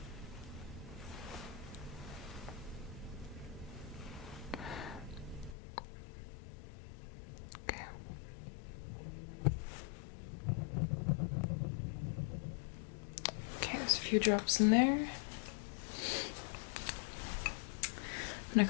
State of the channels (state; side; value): drops out; right; at 5.6 s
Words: Okay. Okay, there's a few drops in there. I'm going